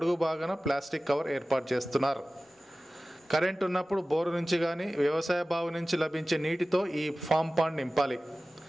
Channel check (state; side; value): normal; both; correlation 0.96